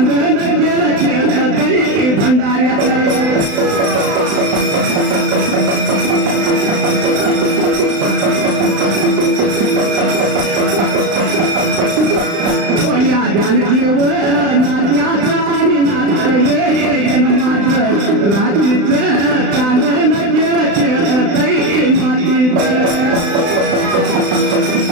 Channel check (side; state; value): left; late; 35 ms